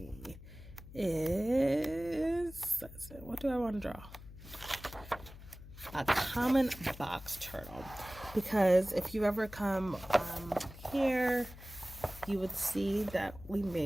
what do I want to draw? A common box turtle, because if you ever come here, you would see that we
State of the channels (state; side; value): noise; left; hum, 16 dB below the sound